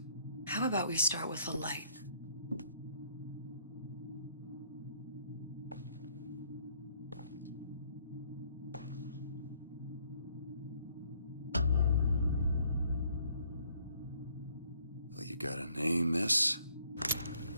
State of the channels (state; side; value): inverted; both; correlation -0.65